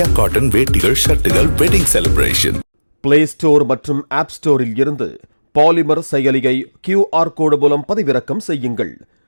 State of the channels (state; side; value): inverted; both; correlation -1.00